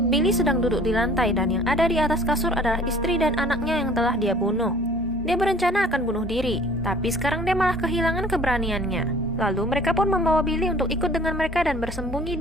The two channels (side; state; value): both; normal; correlation 0.51